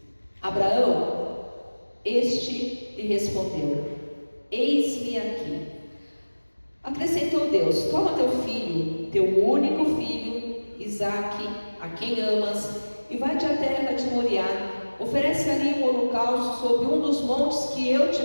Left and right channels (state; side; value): inverted; both; correlation -1.00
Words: Abraão, este lhe respondeu: eis-me aqui. Acrescentou Deus: toma teu filho, teu único filho, Isaque, a quem amas, e vai-te à terra de Moriá. Oferece ali um holocausto sobre um dos montes que eu te